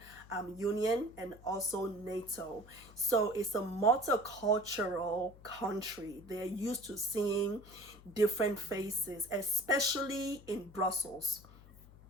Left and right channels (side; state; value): left; noise; hum, 21 dB below the sound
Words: Union and also NATO. So it's a multicultural country. They're used to seeing different faces, especially in Brussels.